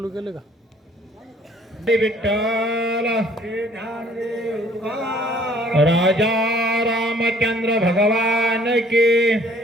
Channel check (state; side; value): normal; both; correlation 0.57